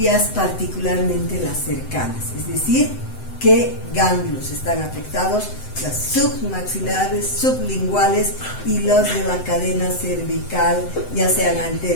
particularmente las cercanas, es decir, qué ganglios están afectados, las submaxilares, sublinguales y los de la cadena cervical, ya sean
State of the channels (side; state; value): right; late; 7.9 ms